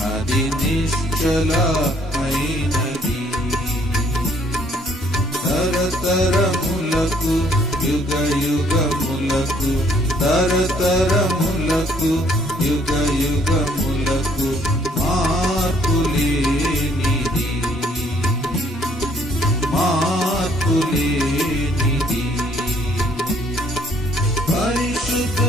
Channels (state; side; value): normal; both; correlation 0.63